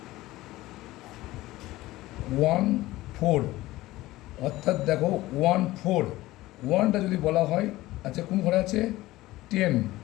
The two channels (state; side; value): quieter; right; 17.6 dB